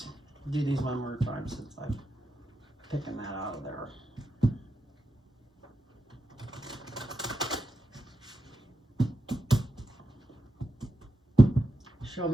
do these one more time since I'm picking that out of there. Show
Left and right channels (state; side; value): normal; both; correlation 0.87